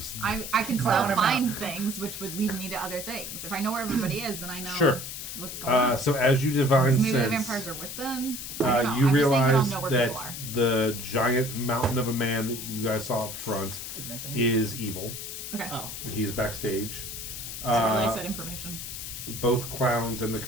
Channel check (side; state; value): left; noise; hiss, 8 dB below the sound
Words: I can Clown still him find things, which would lead me to other things. If I know where everybody is, then I know Sure. what's going on. So as you divine Maybe the sense, vampires are with them. I don't know. you I'm just saying that I'll realize know where people are. that the giant mountain of a man that you guys saw up front Is missing. is evil. Okay. Oh. He's backstage. Relay said information. Both clowns and the